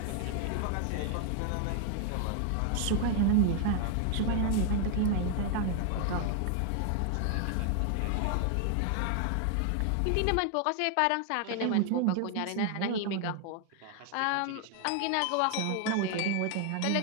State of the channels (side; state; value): both; different; correlation 0.00